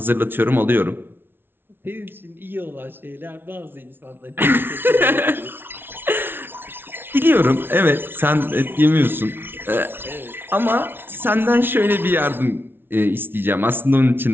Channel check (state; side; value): late; left; 0.11 ms